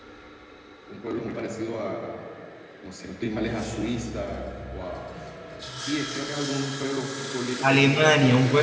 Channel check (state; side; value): identical; both; correlation 1.00